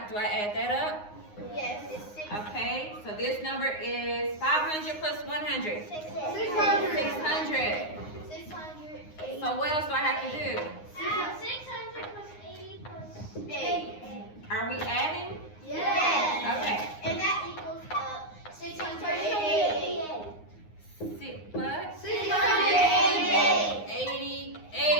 I add that up? Yes, it's 6. Okay, so this number is 500 plus 100. 600. 600. 680. So what else do I have to do? 600 plus 80 plus 8. Are we adding? Yes. Okay. And that equals 688. 6 plus 688.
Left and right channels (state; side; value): late; right; 9.6 ms